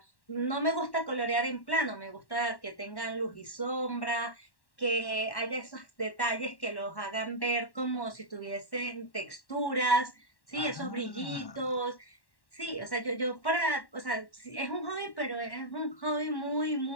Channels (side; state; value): right; late; 1.1 ms